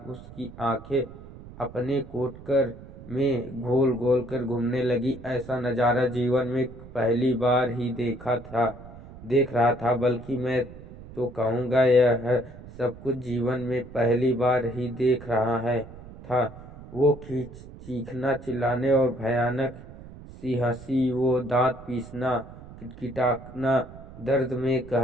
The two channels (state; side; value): noise; right; rumble, 16 dB below the sound